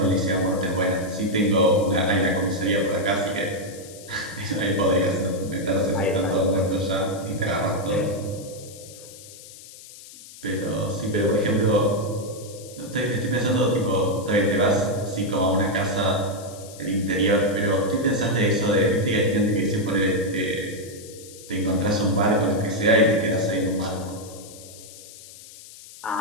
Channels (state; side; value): noise; left; hiss, 18 dB below the sound